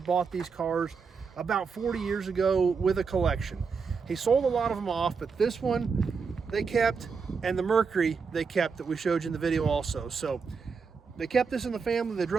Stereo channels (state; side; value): quieter; left; 5.4 dB